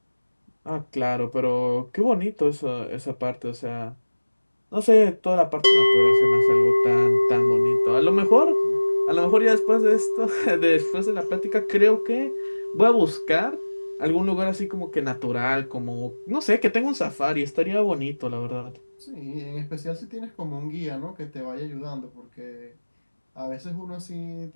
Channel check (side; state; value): both; inverted; correlation -1.00